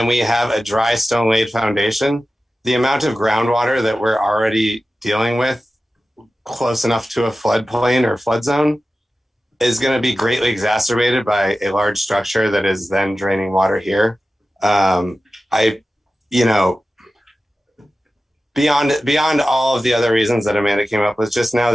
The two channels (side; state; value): both; normal; correlation 0.94